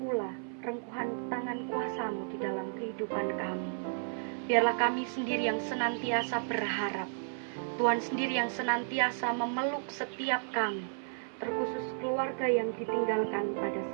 rengkuhan tangan kuasa-Mu di dalam kehidupan kami. Biarlah kami sendiri yang senantiasa berharap, Tuhan sendiri yang senantiasa memeluk setiap kami, terkhusus keluarga yang ditinggalkan pada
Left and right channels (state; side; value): silent; left; 56 dB below the other